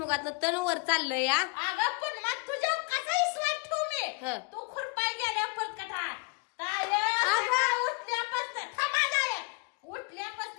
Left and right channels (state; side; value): quieter; right; 29.8 dB